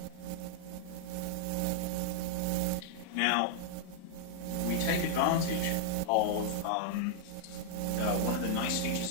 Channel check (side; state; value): both; different; correlation -0.01